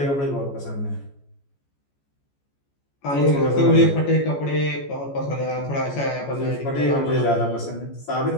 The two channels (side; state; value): right; late; 14 ms